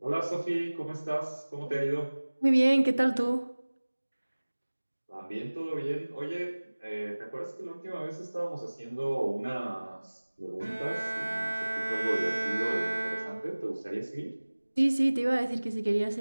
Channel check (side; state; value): both; inverted; correlation -1.00